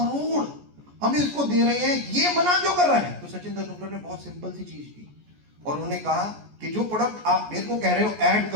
हम इसको दे रहे हैं, ये मना क्यों कर रहा है? तो सचिन तेंदुलकर ने बहुत सिंपल सी चीज की, और उन्होंने कहा कि जो प्रोडक्ट आप मेरे को कह रहे हो ऐड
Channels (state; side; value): late; left; 14 ms